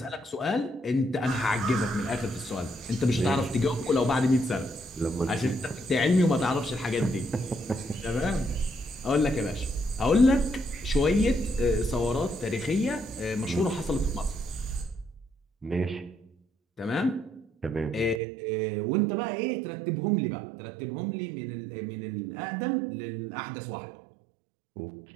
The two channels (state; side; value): drops out; left; at 18.2 s